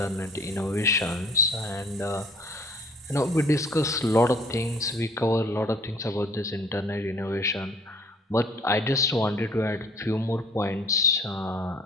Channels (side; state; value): both; normal; correlation 0.55